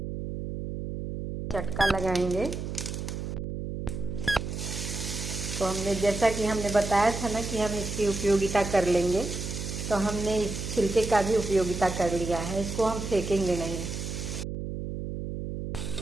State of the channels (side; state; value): right; noise; hum, 5 dB below the sound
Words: चटका लगाएंगे। तो हमने, जैसा कि हमने बताया था ना कि हम इसकी उपयोगिता कर लेंगे, तो हमने इस छिलके का भी उपयोगिता कर लिया है। इसको हम फेंकेंगे नहीं।